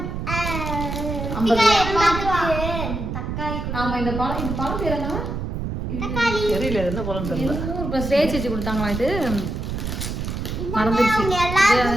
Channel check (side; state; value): right; noise; rumble, 4 dB below the sound